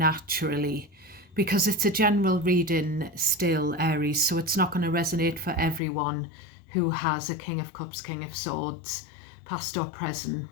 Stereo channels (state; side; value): drops out; right; at 5.8 s